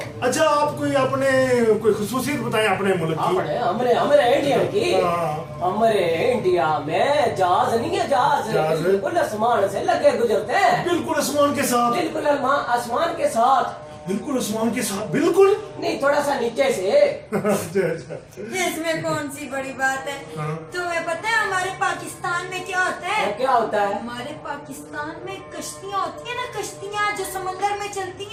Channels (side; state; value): both; identical; correlation 1.00